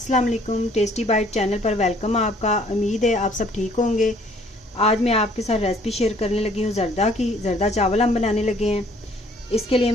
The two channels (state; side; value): normal; both; correlation 0.60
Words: वालेकुम। टेस्टी बाइट चैनल पर वेलकम आपका। उम्मीद है आप सब ठीक होंगे। आज मैं आपके साथ रेसिपी शेयर करने लगी हूँ ज़र्दा की। ज़र्दा चावल हम बनाने लगे हैं। इसके लिए